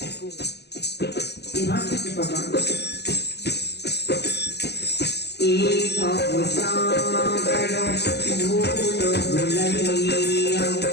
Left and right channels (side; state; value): right; late; 0.49 ms